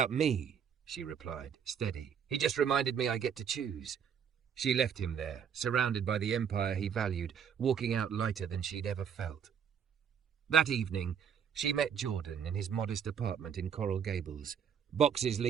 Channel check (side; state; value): left; quieter; 7.8 dB